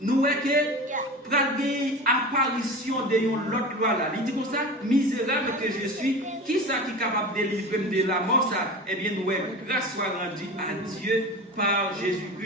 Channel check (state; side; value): normal; both; correlation 0.31